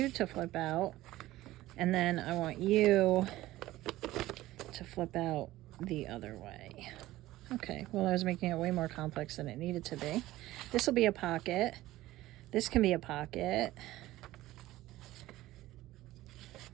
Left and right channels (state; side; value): quieter; left; 16.5 dB